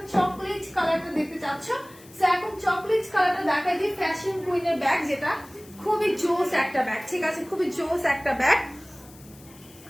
চকলেট কালারটা দেখতে চাচ্ছ। সো এখন চকলেট কালারটা দেখাই দিই, ফ্যাশন কুইনের ব্যাগ, যেটা খুবই জোস একটা ব্যাগ, ঠিক আছে, খুবই জোস একটা ব্যাগ।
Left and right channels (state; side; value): noise; left; hiss, 23 dB below the sound